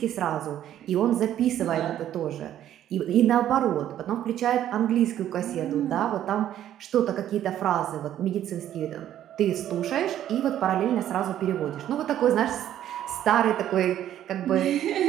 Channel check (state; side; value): quieter; left; 11.5 dB